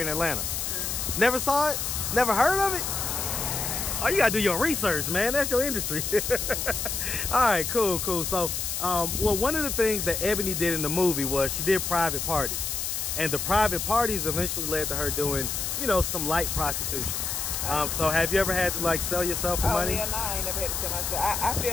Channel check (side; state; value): left; noise; hiss, 2 dB below the sound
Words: in Atlanta. Never saw it? Never heard of it? Oh, you gotta do your research, man. That's your industry. All right, cool. So, well, one of the things that Ebony did in the movie was she did private parties. And the private parties eventually led to her doing, you know, some light prostitution. So have you ever had to, like, sell yourself for money? Yeah, no, I ain't never had to sell myself. I